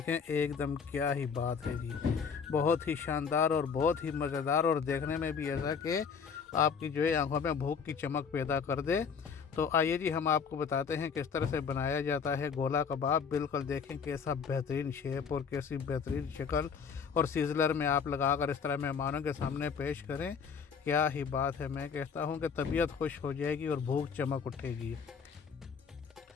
एकदम क्या ही बात है जी, बहुत ही शानदार और बहुत ही मज़ेदार, और देखने में भी ऐसा कि आपकी जो है आंखों में भूख की चमक पैदा कर दे। तो आइए जी, हम आपको बताते हैं किस तरह से बनाया जाता है गोला कबाब। बिल्कुल देखें कैसा बेहतरीन शेप और कैसी बेहतरीन शक्ल, और सीजलर में आप लगाकर इस तरह मेहमानों के सामने पेश करें। क्या ही बात है, मैं कहता हूँ कि तबीयत खुश हो जाएगी और भूख चमक उठेगी।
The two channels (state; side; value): quieter; right; 6.2 dB